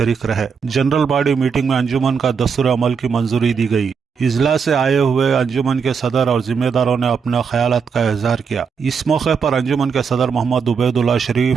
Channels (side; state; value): left; quieter; 6.1 dB